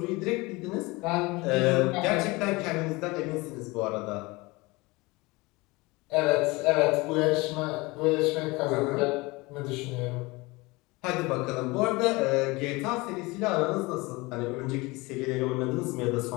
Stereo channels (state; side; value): quieter; right; 23.4 dB